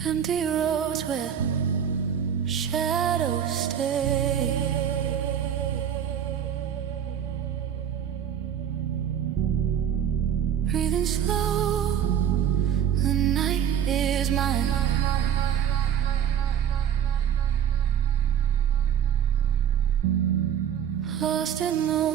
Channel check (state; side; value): quieter; left; 9.0 dB